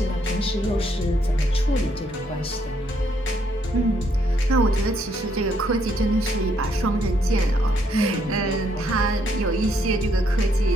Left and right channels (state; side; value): normal; both; correlation 0.72